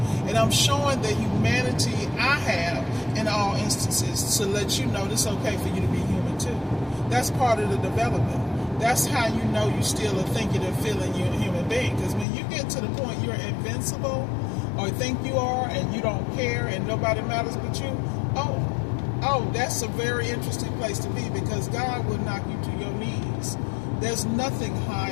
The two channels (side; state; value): right; drops out; at 12.2 s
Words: And I'm showing the humanity I have in all instances to let you know it's okay for you to be human too. That's part of the development. That's how you know you still are thinking and feeling you're a human being. Because when you get to the point you're invincible or think you are and you don't care and nobody matters but you, oh, that's a very interesting place to be, because God will knock you to your knees. There's nothing